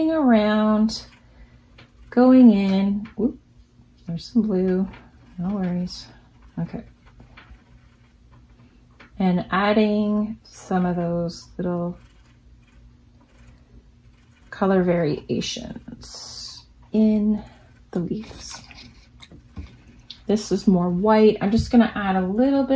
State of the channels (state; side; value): identical; both; correlation 1.00